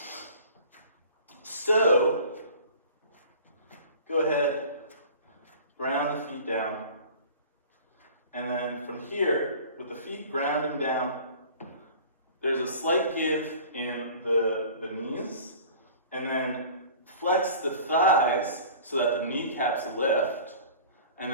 So go ahead, ground the feet down, and then from here, with the feet grounding down, there's a slight give in the knees. And then flex the thighs so that the kneecaps lift, and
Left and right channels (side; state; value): both; inverted; correlation -0.44